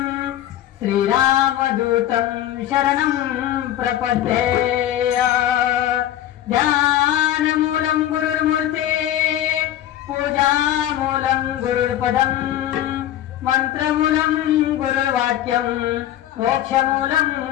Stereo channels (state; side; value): quieter; right; 12.4 dB